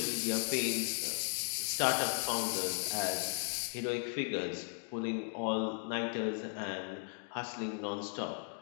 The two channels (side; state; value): right; silent; 53 dB below the other